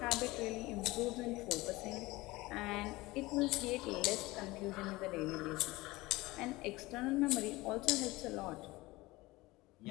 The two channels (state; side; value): quieter; right; 20.5 dB